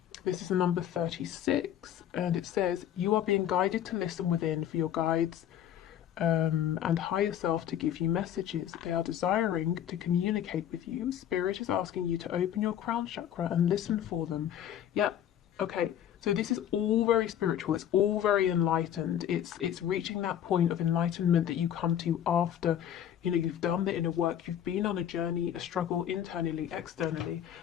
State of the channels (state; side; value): quieter; right; 10.4 dB